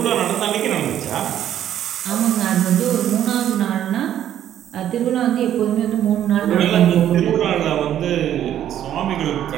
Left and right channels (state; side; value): quieter; left; 10.9 dB